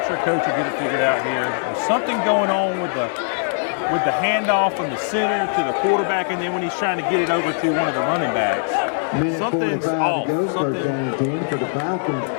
Coach will get it figured out here. There's something going on with the handoff from the center to the quarterback, and then when he's trying to get it over to one of the running backs. Minute 45 to go, first down and 10 for the Falcons.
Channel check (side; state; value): right; silent; 65 dB below the other